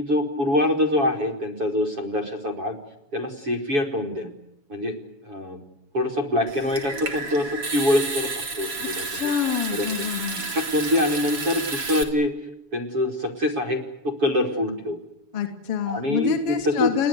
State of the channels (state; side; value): late; left; 7.1 ms